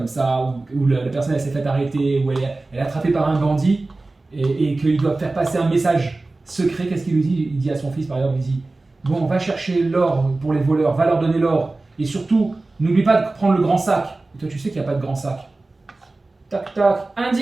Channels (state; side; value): quieter; left; 3.2 dB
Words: ça, où la personne elle s'est fait arrêter, où elle est attrapée par un bandit et qu'il doit faire passer un message secret, qu'est-ce qu'il lui dit? Il dit à son fils, par exemple, il dit, bon, va chercher l'or pour les voleurs, va leur donner l'or. Et surtout, n'oublie pas de prendre le grand sac. Et toi, tu sais qu'il n'y a pas de grand sac. Tac, tac,